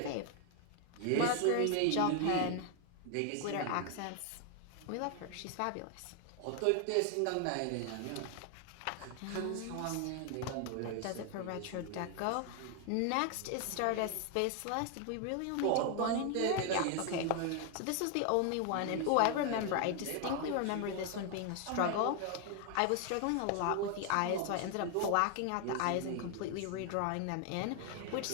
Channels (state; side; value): different; both; correlation 0.00